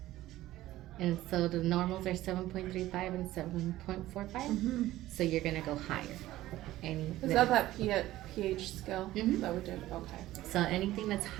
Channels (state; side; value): quieter; left; 15.5 dB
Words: And so the normals are 7.35 and 7.45. So you're going to go higher. Is that pH scale that we did? Okay. So anything that's